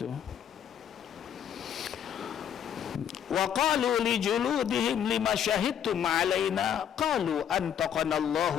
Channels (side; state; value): right; quieter; 9.1 dB